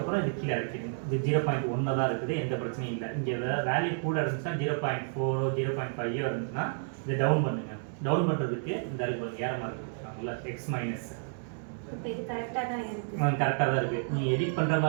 இது கீழே இறக்கிடுங்க. இது 0.1 தான் இருக்குது, எந்த பிரச்சனையும் இல்லை. இங்கே வேல்யூ கூட இருந்துச்சுன்னா 0.4 0.5 இருந்துச்சுன்னா இதை டவுன் பண்ணுங்க. டவுன் பண்ணுறதுக்கு இந்த இருக்கு ஏற மாதிரி கொடுத்துருக்காங்கல்ல, எக்ஸ் மைனஸ். கரெக்டாக தான் இருக்குது. நீங்கள் எடிட் பண்ணுற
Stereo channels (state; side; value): silent; left; digital silence